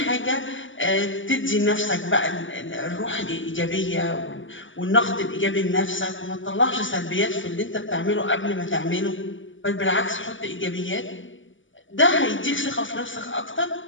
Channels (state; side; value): late; right; 0.56 ms